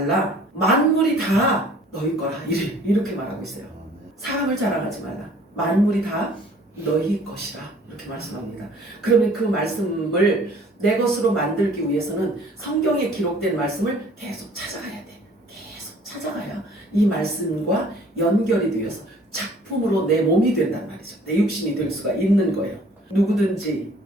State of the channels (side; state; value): both; normal; correlation 0.54